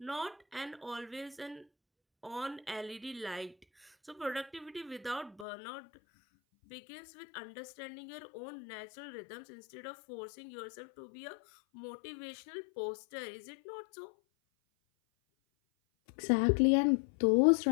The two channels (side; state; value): right; drops out; at 5.5 s